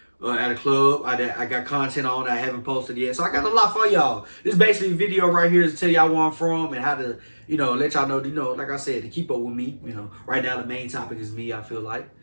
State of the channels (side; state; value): both; inverted; correlation -1.00